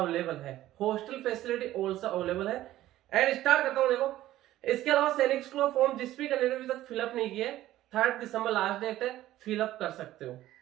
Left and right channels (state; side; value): quieter; left; 14.5 dB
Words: है। हॉस्टल फैसिलिटी ऑल्सो अवेलेबल है। एंड स्टार्ट करता हूं। देखो, इसके अलावा सैनिक स्कूल फॉर्म जिस भी कैंडिडेट अभी तक फिलअप नहीं किए, 3 दिसंबर लास्ट डेट है, फिलअप कर सकते हो।